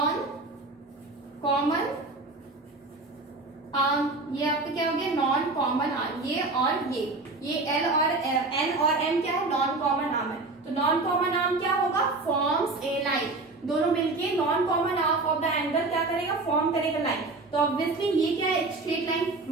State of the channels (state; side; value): quieter; left; 3.3 dB